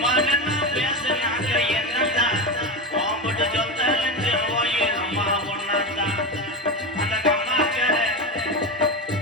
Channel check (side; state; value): both; normal; correlation 0.18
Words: நின்னு பேசுனாங்க என்னதா ஓம்பட்டு சொத்தலஞ்சு ஓயிரம்மா ஒன்னதா. அந்த கம்மாக்கர